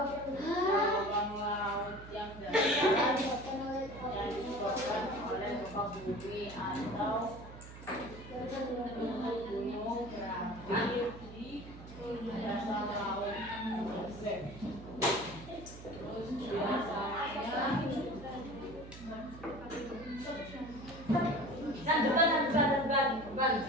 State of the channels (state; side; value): noise; right; hum, 15 dB below the sound